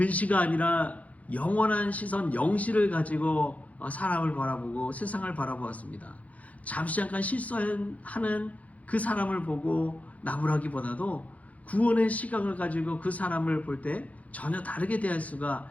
아니라 영원한 시선 영시를 가지고 사람을 바라보고 세상을 바라보았습니다. 잠시 잠깐 실수하는 그 사람을 보고 나무라기보다도 구원의 시각을 가지고 그 사람을 볼 때 전혀 다르게 대할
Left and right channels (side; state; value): right; late; 0.069 ms